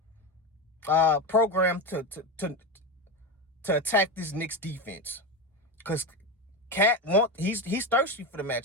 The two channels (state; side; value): normal; both; correlation 0.17